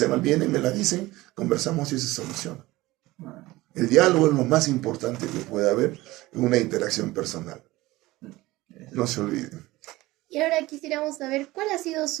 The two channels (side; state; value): left; quieter; 18.9 dB